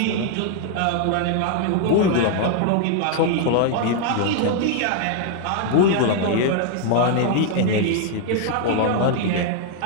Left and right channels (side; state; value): both; different; correlation 0.00